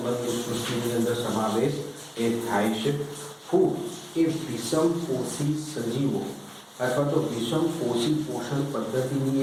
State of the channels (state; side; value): identical; both; correlation 1.00